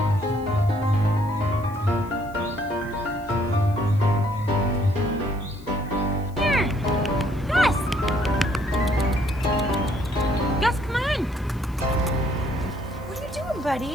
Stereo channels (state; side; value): noise; left; hiss, 27 dB below the sound